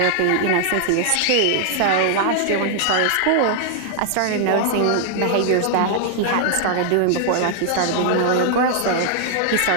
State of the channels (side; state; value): both; different; correlation -0.01